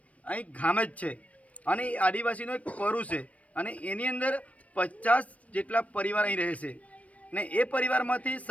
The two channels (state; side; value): late; right; 0.066 ms